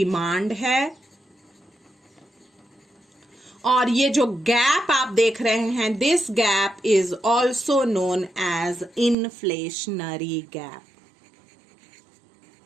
है। और ये जो गैप आप देख रहे हैं, this gap is also known as inflationary gap.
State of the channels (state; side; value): drops out; left; at 9.2 s